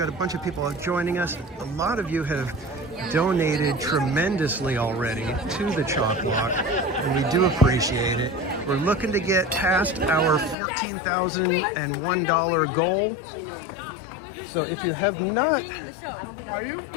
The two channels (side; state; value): right; drops out; at 10.6 s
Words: a bunch of people joining us. A lot of you have donated tremendously already to the CHOC Walk, and we do appreciate it. We're looking to get past our $14,001 goal. So if you have not